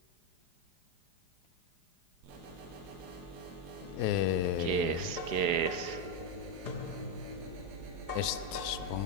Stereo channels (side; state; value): left; late; 4.8 ms